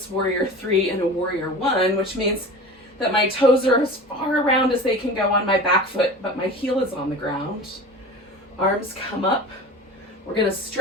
warrior three in a warrior one, which means that my toes are as far around as they can go on my back foot, but my heel is on the ground. Arms come up. We're going to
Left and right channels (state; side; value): normal; both; correlation 0.36